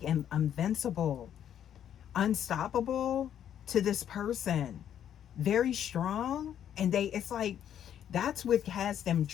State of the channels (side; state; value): right; quieter; 9.8 dB